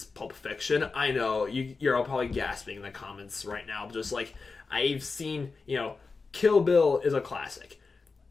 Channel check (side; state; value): right; quieter; 4.3 dB